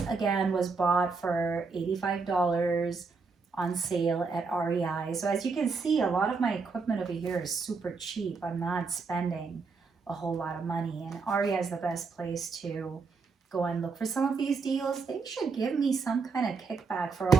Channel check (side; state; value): left; quieter; 4.7 dB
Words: again, was bought for $85 on sale at REI. So as you can see, a lot of my equipment over here is super cheap. I'm not spending a whole lot of money, and REI is the best place to go and look for some of these deals. They should give me some kind of kickback for